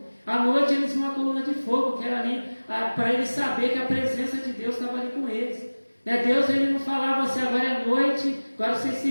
À noite eles viam uma coluna de fogo, que era ali para eles saberem que a presença de Deus estava ali com eles. Né? Deus ele não falava assim: agora é noite, agora vocês se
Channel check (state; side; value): inverted; both; correlation -1.00